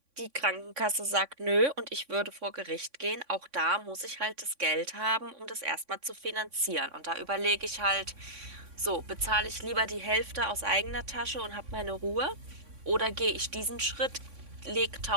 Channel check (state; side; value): late; left; 3.6 ms